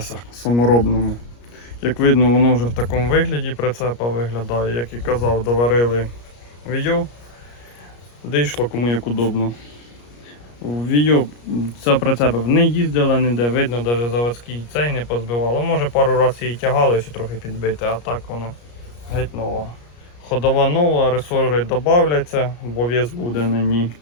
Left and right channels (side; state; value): right; late; 34 ms